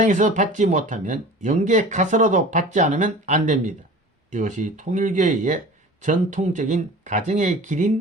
받지 못하면 영계 가서라도 받지 않으면 안 됩니다. 이것이 통일교회의 전통적인 가정의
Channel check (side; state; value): both; normal; correlation 0.40